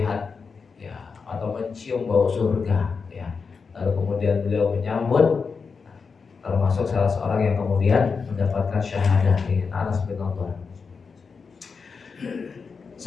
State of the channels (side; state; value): right; quieter; 5.2 dB